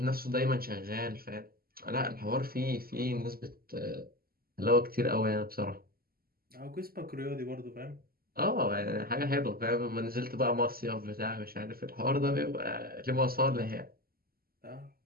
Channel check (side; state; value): left; late; 0.43 ms